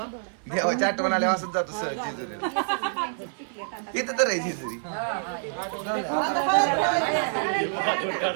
आठवण आल्यावर असंच जातो सहज जेजुरीला. इथं तर आहे जेजुरी.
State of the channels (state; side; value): silent; left; 58 dB below the other